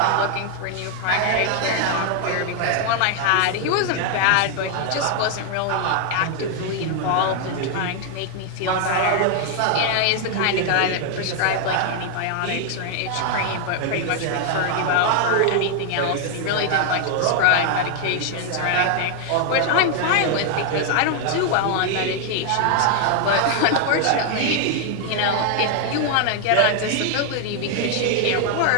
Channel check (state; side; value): different; both; correlation 0.00